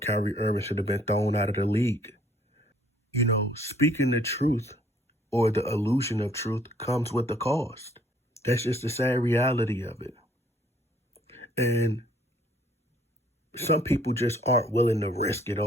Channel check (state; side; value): normal; both; correlation 0.61